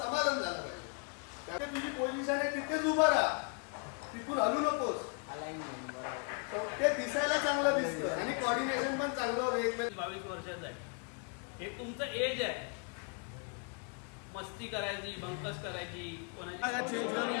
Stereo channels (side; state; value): right; quieter; 39.5 dB